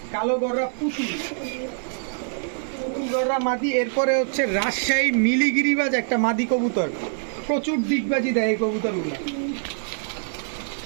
কালো গররা পুতুল গররা মাদি। এরপরে হচ্ছে রাজশাহী মিলিগিরিবাজ একটা মাদি কবুতর, প্রচুর ডিগবাজি দেয় এই কবুতরগুলো।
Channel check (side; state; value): left; silent; 62 dB below the other